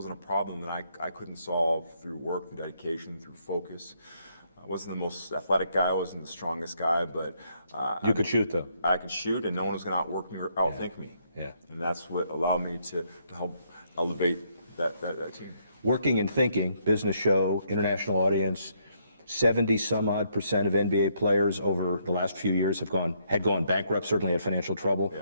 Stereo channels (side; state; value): both; inverted; correlation -0.73